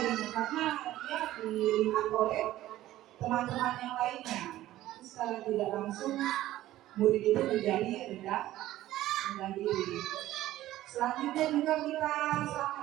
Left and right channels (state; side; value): quieter; left; 14.7 dB